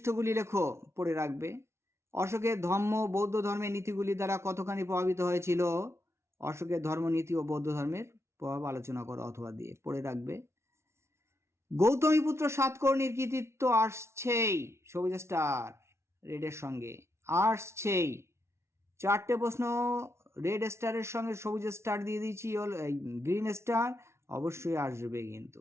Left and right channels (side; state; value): left; late; 0.13 ms